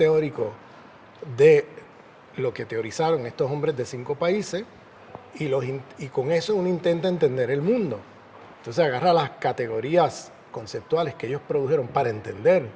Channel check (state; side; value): identical; both; correlation 1.00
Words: de lo que teorizaron estos hombres de 5 países y con eso uno intenta entender el mundo. Entonces agarra las categorías conceptuales que ellos produjeron para entender